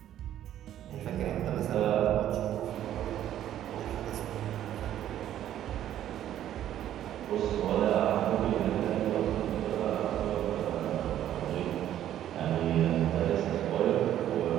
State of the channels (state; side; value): quieter; left; 11.6 dB